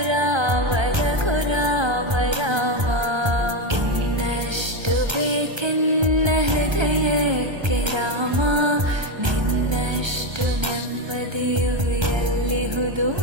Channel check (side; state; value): left; late; 1.3 ms